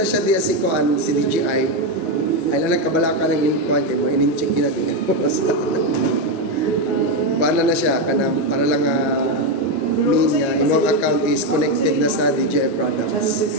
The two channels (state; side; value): late; right; 1.3 ms